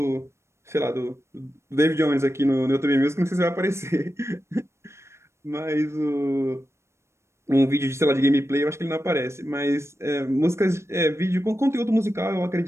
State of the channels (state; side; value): late; left; 0.13 ms